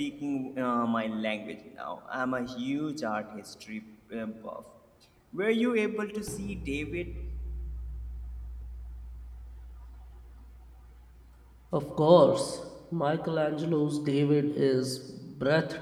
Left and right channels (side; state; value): both; identical; correlation 1.00